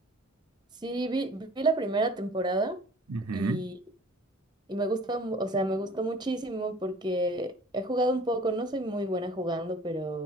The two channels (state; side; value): normal; both; correlation 0.49